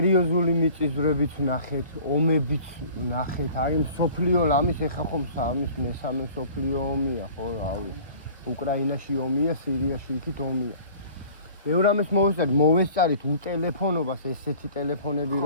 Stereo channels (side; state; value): both; inverted; correlation -0.47